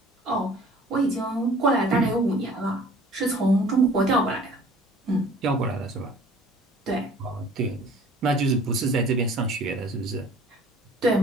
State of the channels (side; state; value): both; normal; correlation 0.50